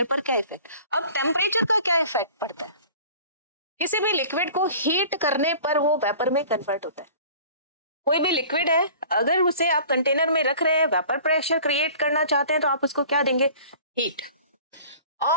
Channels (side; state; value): both; inverted; correlation -0.46